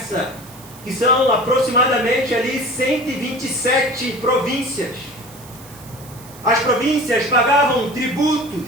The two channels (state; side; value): noise; right; hiss, 20 dB below the sound